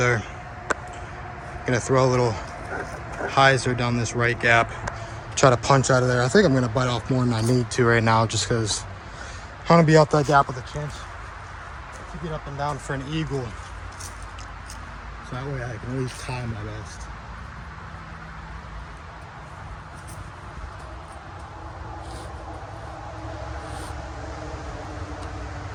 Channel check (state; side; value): identical; both; correlation 1.00